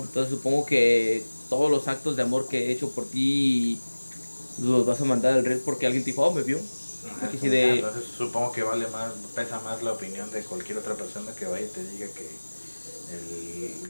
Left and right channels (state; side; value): inverted; both; correlation -1.00